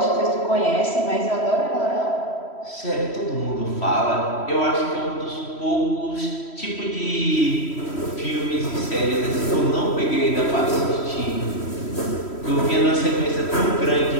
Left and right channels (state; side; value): late; right; 3.1 ms